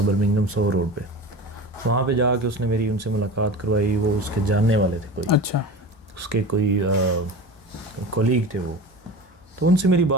برمنگھم سو روڈ پہ. وہاں پہ جا کے اس نے میری ان سے ملاقات کروائی. وہ اس کے جاننے والے تھے کوئی, اچھا اس کے کوئی کولیگ تھے وہ. تو ان سے میری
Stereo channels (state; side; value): normal; both; correlation 0.32